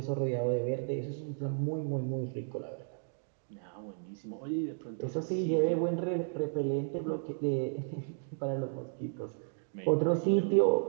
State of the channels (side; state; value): left; silent; digital silence